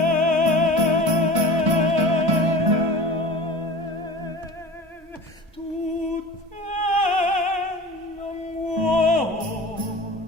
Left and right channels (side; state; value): both; normal; correlation 0.36